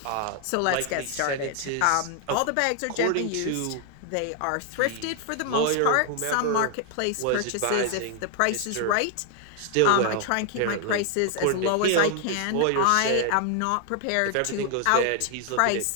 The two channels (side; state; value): both; different; correlation 0.00